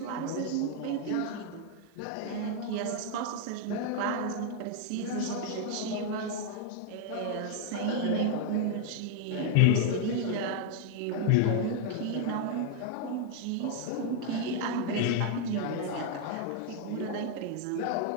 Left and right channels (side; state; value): both; different; correlation 0.00